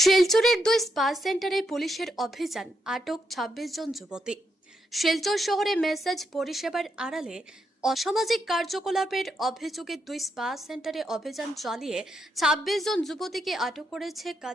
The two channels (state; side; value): normal; both; correlation 0.81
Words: 2 স্পা সেন্টারে পুলিশের অভিযান, আটক 26 জন যুবতী। শিলচর শহরে মেসেজ পরিষেবার আড়ালে অসামাজিক কার্যকলাপের অভিযোগে 2 স্পা সেন্টারে অভিযান চালিয়ে 26 জন যুবতীকে আটক করেছে